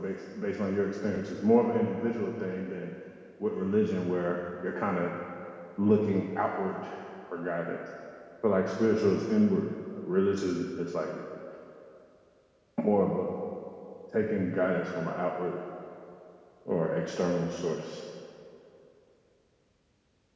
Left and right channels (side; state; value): both; identical; correlation 1.00